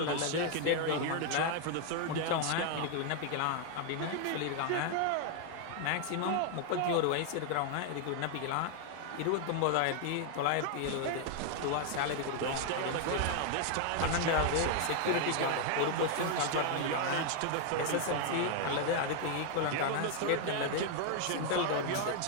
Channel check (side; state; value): both; different; correlation 0.00